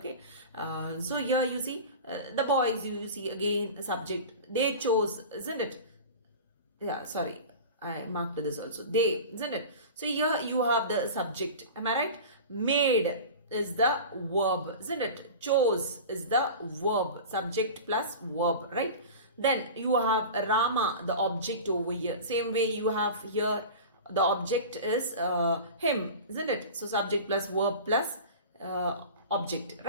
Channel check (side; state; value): both; inverted; correlation -0.33